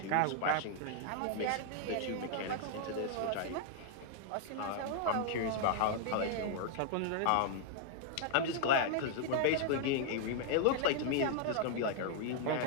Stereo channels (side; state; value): both; different; correlation -0.01